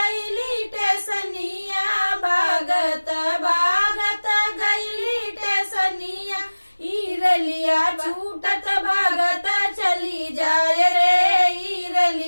टेसनिया, भागत भागत गईली टेसनिया। ईरलिया छूटत भागत चली जाय रे,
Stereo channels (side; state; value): both; inverted; correlation -1.00